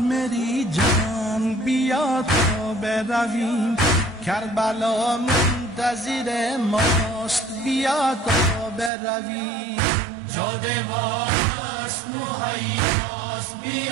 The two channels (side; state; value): left; drops out; at 8.9 s